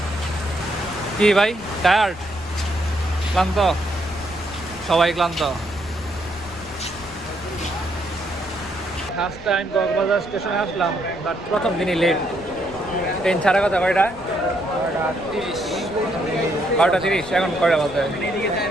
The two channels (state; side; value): noise; left; rumble, 18 dB below the sound